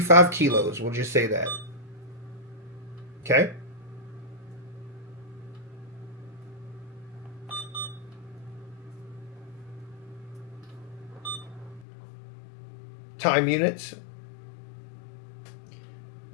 kilos. We'll just say that. Okay? Time units.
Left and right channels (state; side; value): drops out; right; at 11.9 s